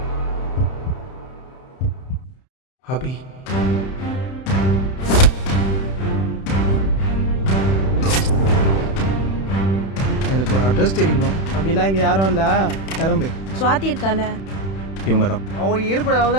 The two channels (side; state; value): right; late; 31 ms